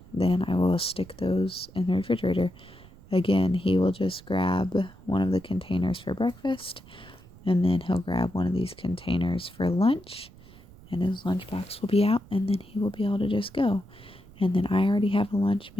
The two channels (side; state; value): right; noise; rumble, 22 dB below the sound